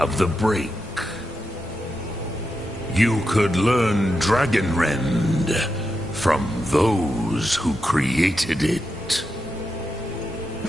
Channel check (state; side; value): normal; both; correlation 0.87